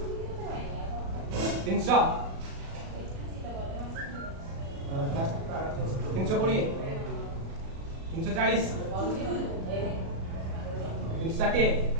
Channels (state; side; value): late; left; 37 ms